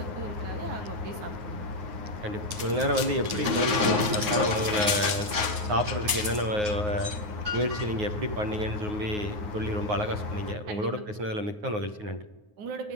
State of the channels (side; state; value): left; late; 9.5 ms